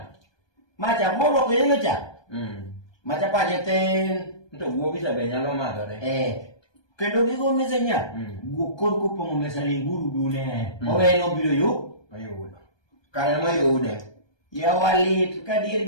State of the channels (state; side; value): late; right; 1.2 ms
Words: Macha moro ko yenga cha. Macha paje ten. Nto guogi sabe nyalo madhore. Kendo gigo mese nya. Guokor kopong'o mesa linguru dune. Oweno biro yu. Mayudo. Kare mayude. Yawalit kadir